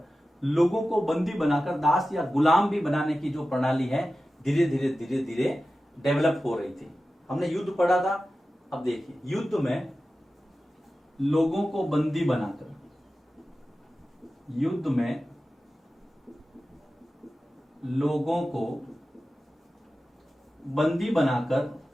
लोगों को बंदी बनाकर दास या गुलाम भी बनाने की जो प्रणाली है, धीरे धीरे डेवलप हो रही थी। हमने युद्ध पढ़ा था। अब देखिए, युद्ध में लोगों को बंदी बनाकर, युद्ध में लोगों को बंदी बनाकर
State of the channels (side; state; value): both; normal; correlation 0.94